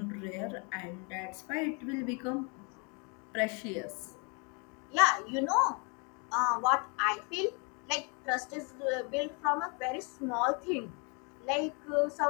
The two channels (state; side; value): quieter; right; 34.0 dB